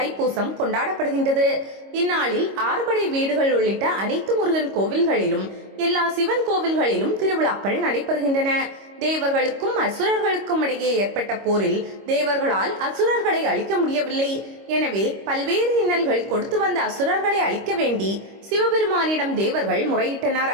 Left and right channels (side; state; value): left; late; 25 ms